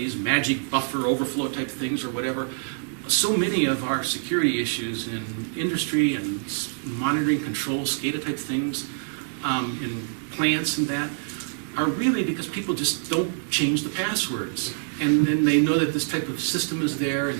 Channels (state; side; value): silent; left; digital silence